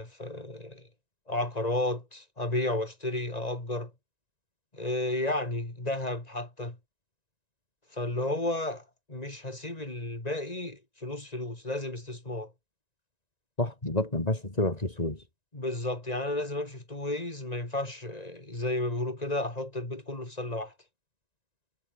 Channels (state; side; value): late; right; 1.9 ms